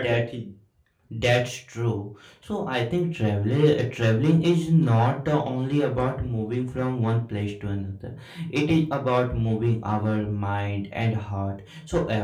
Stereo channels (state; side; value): identical; both; correlation 1.00